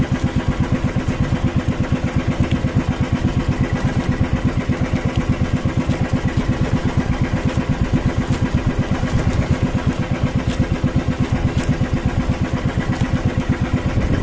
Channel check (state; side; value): identical; both; correlation 1.00